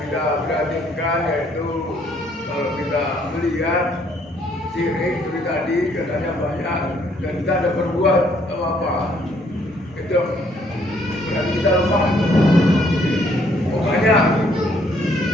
kita perhatikan, yaitu kalau kita melihat sirik seperti tadi katanya banyak dan kita ada berbuat apa itu berarti kita lemah. Pokoknya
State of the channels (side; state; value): both; normal; correlation 0.66